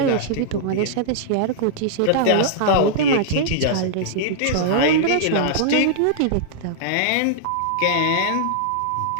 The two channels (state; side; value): different; both; correlation -0.01